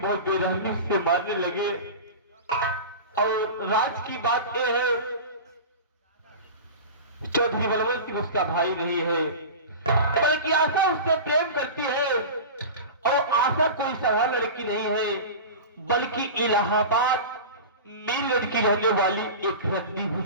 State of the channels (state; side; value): inverted; both; correlation -0.30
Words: बेरहमी से मारने लगे। और राज की बात यह है चौधरी बलवंत सिंह उसका भाई नहीं है, बल्कि आशा उससे प्रेम करती है। और आशा कोई साधारण लड़की नहीं है, बल्कि इलाहाबाद में लड़की रहने वाली एक रद्दी